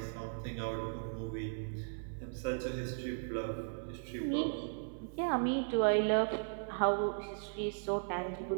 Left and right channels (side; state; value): left; silent; 53 dB below the other